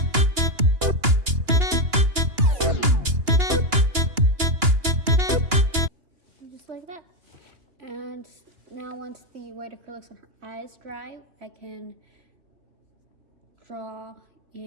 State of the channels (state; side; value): late; left; 2.9 ms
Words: Just like that. And now once the white acrylics on her eyes dry, I can draw